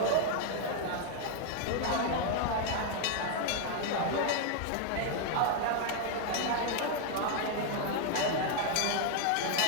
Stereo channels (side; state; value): both; different; correlation 0.00